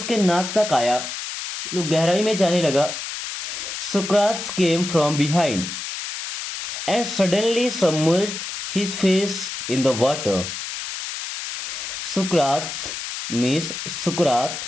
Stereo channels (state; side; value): noise; left; hiss, 7 dB below the sound